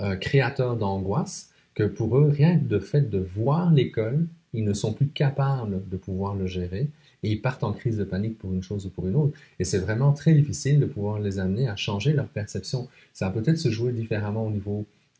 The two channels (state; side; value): identical; both; correlation 1.00